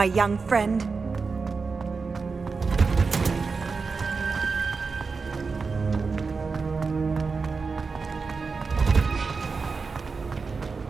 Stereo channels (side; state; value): left; quieter; 4.7 dB